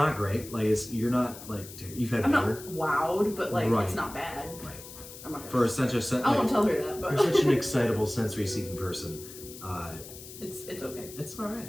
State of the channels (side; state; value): left; noise; hiss, 15 dB below the sound